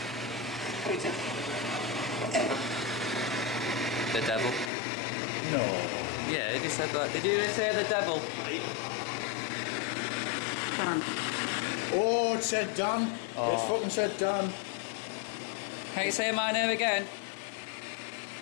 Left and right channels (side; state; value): right; drops out; at 4.7 s